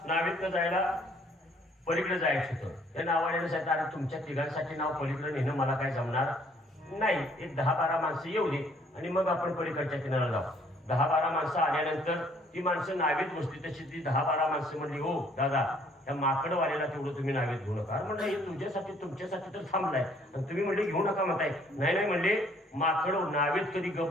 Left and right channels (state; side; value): normal; both; correlation 0.62